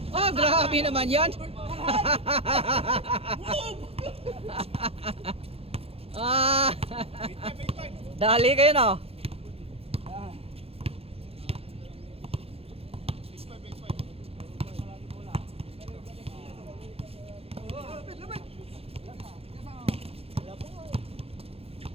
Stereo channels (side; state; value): left; late; 0.28 ms